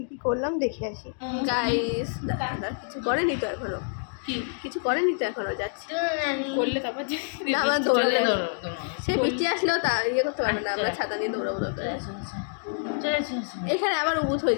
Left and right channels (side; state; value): right; silent; digital silence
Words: কী করলাম দেখে আসি। গাইস দাদা কিছু করেনি তো এখনো, কিছু করেনি তো এখনো, যাচ্ছে করলে তারপর না আমরা দৌড়ালে সে বৃষ্টি আসলেও তা ইয়ে করতে পারবে না, আমরা ছাতা নিয়ে দৌড়াবো। এখানে আবার উবুত হয়ে